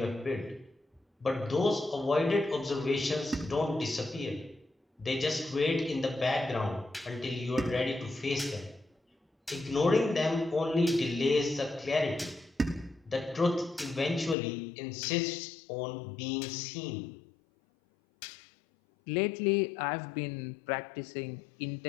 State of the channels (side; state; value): right; drops out; at 14.4 s